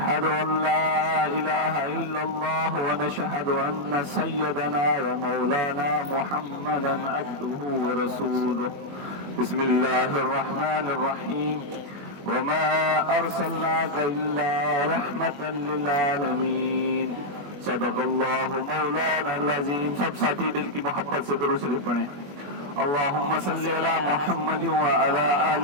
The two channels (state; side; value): late; left; 21 ms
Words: أن لا إله إلا الله ونشهد أن سيدنا ومولانا محمدا عبده ورسوله. بسم الله الرحمن الرحيم. وما أرسلناك إلا رحمة للعالمين. صدق اللہ مولانا العظیم. سب ساتھی دل کی محبت سے درود شریف پڑھیں. اللہم صلی علی محمد وعلی